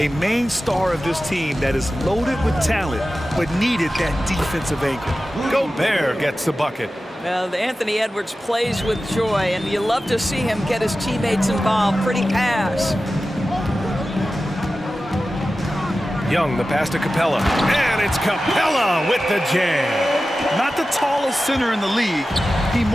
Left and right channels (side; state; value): both; normal; correlation 0.94